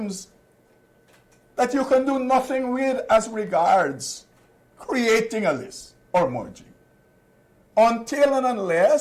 that you can do nothing with as regards creating a list or merging. Until and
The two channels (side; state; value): both; identical; correlation 1.00